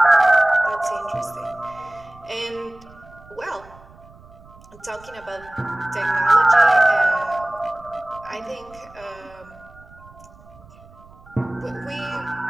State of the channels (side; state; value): right; noise; rumble, 23 dB below the sound